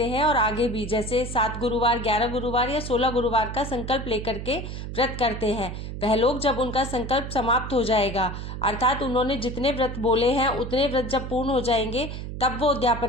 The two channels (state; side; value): noise; right; hum, 7 dB below the sound